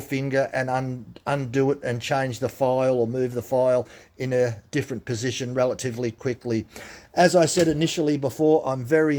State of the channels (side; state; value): both; identical; correlation 1.00